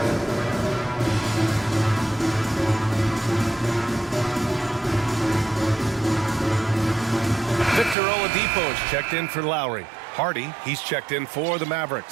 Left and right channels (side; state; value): left; drops out; at 8.0 s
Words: Victor Oladipo's checked in for Lowry. Hardy, he's checked in for the